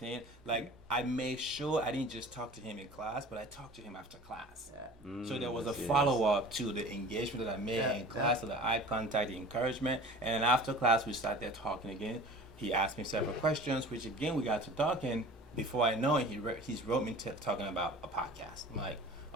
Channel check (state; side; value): noise; right; hum, 25 dB below the sound